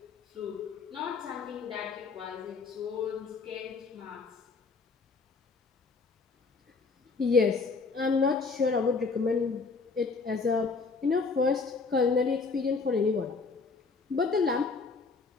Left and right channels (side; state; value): right; quieter; 4.4 dB